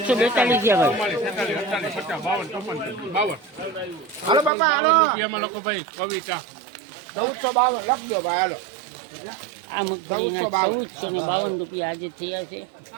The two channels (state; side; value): drops out; left; at 4.5 s